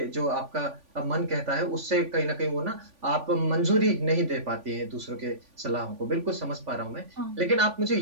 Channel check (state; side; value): late; left; 3.5 ms